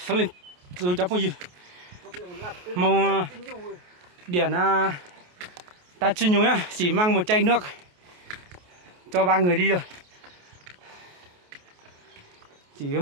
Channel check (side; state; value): left; late; 28 ms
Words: lên rồi cháu phong gì? Mong điển ta chuyên nhung nhá, chỉ mang một chai nước cho 3 người đi rồi. Chỉ có